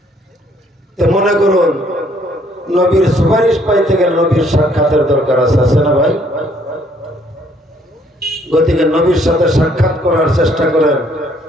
মনে করুন, নবীর সুপারিশ পাইতে গেলে নবীর সাক্ষাতের দরকার আছে, আছে না ভাই? গতিকে নবীর সাথে সাক্ষাৎ করার চেষ্টা করেন।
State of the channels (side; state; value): both; normal; correlation 0.65